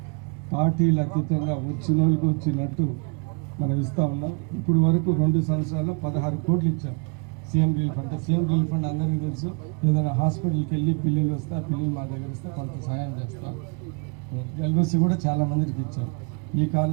పార్టీలు అతీతంగా వచ్చిన వాళ్ళకి వచ్చినట్టు మనం ఇస్తూ ఉన్నాం. ఇప్పుడు వరకు 2 సంవత్సరాల్లో 16 కోట్లు ఇచ్చాం CM relief fund. CM relief fund అందరికీ తెలుసు, ఏదైనా హాస్పిటల్కి వెళ్ళి పిల్లలు వస్తే ఆ పిల్లలు మా దగ్గర ఇస్తే కొంత సహాయం చేస్తాం. ఎల్ఓసి కూడా చాలా మందికి ఇచ్చాం. ఈ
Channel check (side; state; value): left; quieter; 34.9 dB